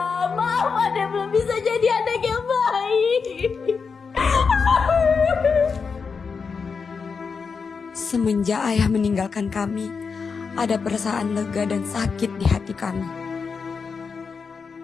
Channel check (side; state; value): right; quieter; 5.4 dB